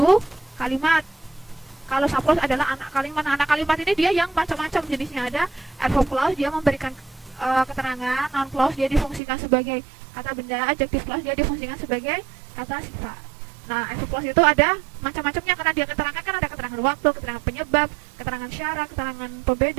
kalimat. Kalau sub clause adalah anak kalimat. Nah, anak kalimat ini dia yang macam-macam jenisnya. Ada adverb clause dia memberikan keterangan, noun clause dia difungsikan sebagai kata benda, adjective clause dia difungsikan sebagai kata sifat. Nah, adverb clause itu ada macam-macamnya karena dia keterangan kan ada keterangan waktu, keterangan penyebab, keterangan syarat, keterangan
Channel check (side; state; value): left; drops out; at 9.2 s